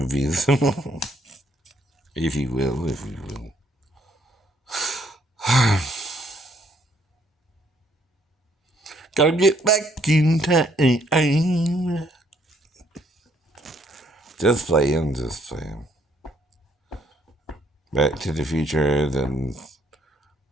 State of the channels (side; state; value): both; normal; correlation 0.68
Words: if you will, if you will. Gotta get back in time. Just playing. Back to the Future, then